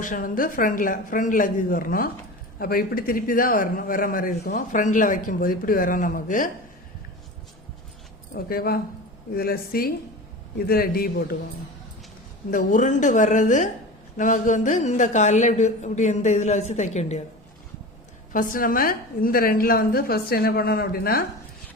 வந்து ஃப்ரண்ட் லெக்குக்கு வரணும். அப்போ இப்படி திருப்பி தான் வர மாதிரி இருக்கும். ஃப்ரண்டில் வைக்கும்போது இப்படி வரும் நமக்கு. ஓகேவா? இதில் சி, இதில் டி போட்டுக்கோங்க. இந்த உருண்டு வர்றது நமக்கு வந்து இந்த காலில் இப்படி இப்படி இந்த இதில் வச்சு தைக்க வேண்டியது. ஃபஸ்ட்டு நம்ம இந்த ரெண்டில் வந்து ஃபஸ்ட்டு என்ன பண்ணணும் அப்படின்னா,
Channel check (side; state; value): both; normal; correlation 0.32